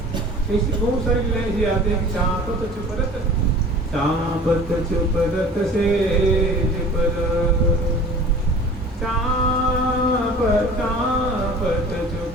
ऐसी बहुत सारी लीलाएं ऐसी आती हैं कि चापत चुपरत, चापत चुपरत से पर, चापत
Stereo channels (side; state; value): both; normal; correlation 0.43